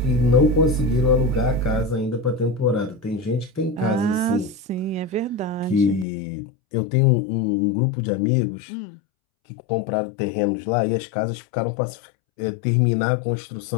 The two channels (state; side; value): drops out; right; at 6.1 s